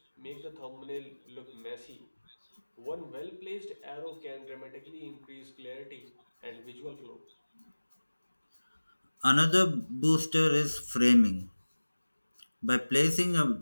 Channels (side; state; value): both; inverted; correlation -1.00